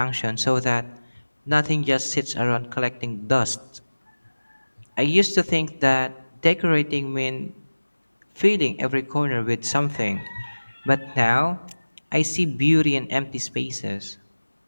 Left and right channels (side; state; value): both; inverted; correlation -1.00